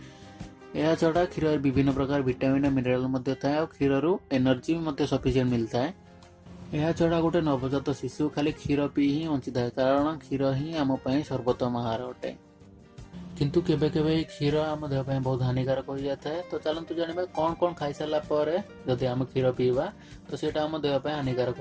यह छड़ा क्षीर विभिन्न प्रकार विटामिन मिनराल थाए और क्षीर एनर्जी सफिशिएंट मिलता है। यह छड़ा गोटे नवजात शिशु खाली क्षीर पी ही बंची था, कारण क्षीर ही आम सर्वोत्तम आहार अटे। किंतु केबे केबे क्षीर आम देह बहुत हानिकारक हो जाता है। तो चलतु जाना कौन कौन खाई सारा पर जदि आम क्षीर पीवा तो सीटा आम देह हानिकारक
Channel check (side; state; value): both; identical; correlation 1.00